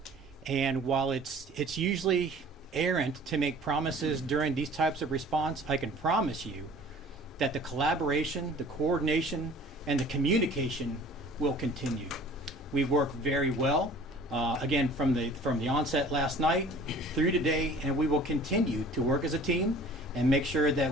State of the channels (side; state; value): both; normal; correlation 0.48